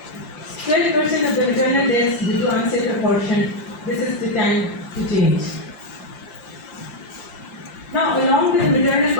%12% of the maternal deaths due to unsafe abortion. This is the time to change. Now, along with the maternal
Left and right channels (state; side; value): late; right; 5.8 ms